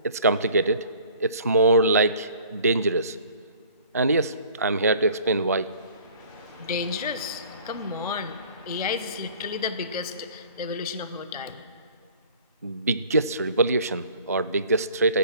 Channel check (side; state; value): both; inverted; correlation -0.51